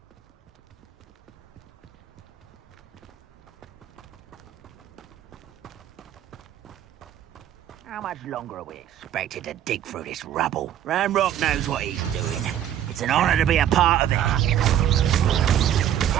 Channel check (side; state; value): left; quieter; 10.7 dB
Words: How much longer are we expected to dig through this rubble? Ranrock knows what he's doing. It's an honor to be a part of it.